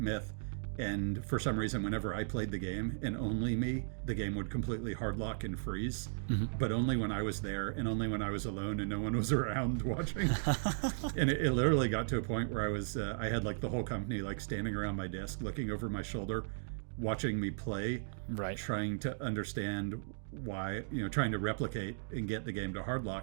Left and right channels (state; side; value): silent; left; digital silence